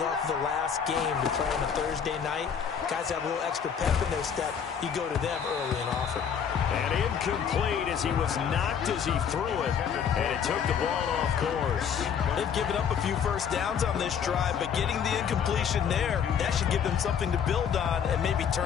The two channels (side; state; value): right; quieter; 7.5 dB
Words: off the last game to play on a Thursday night? Guys have a little extra pep in their step. You go to them early and often. And incomplete as he was knocked as he threw it. And it took the ball off course. They've given up a few first downs on this drive, but getting the incompletion there, that should give them something to build on and maybe